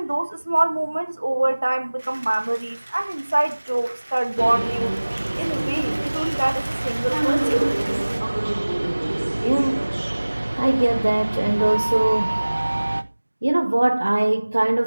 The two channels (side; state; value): both; inverted; correlation -1.00